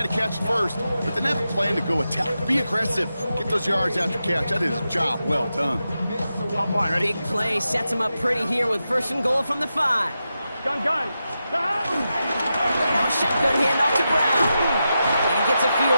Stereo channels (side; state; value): both; inverted; correlation -0.89